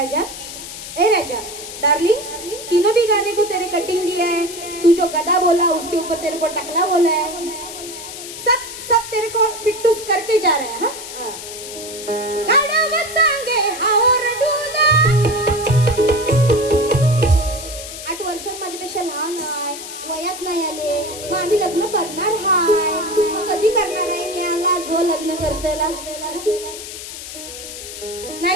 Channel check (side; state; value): left; noise; hiss, 10 dB below the sound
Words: ए राजा डार्लिंग, तीनों भी गाने को तेरे कटिंग दिया है। तू जो गदा बोला उसके ऊपर तेरे को टकला बोला है, सब सब तेरे को फिट्टूस करके जा रहे हैं। हाँ गाणं सांगे हावर डुला 8 वर्षांत माझ्यापेक्षा लहान आहे, वयात नाही आले, मग आम्ही लग्न करणार हाय, मग कधी करणार आहे मी आला जो लग्न करतेला